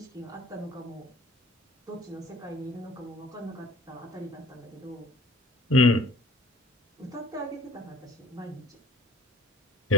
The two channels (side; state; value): both; normal; correlation 0.48